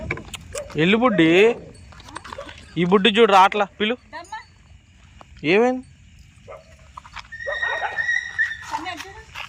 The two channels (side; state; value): both; identical; correlation 1.00